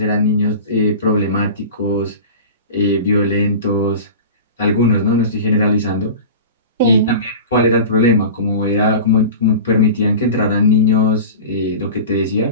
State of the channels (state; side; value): inverted; both; correlation -0.33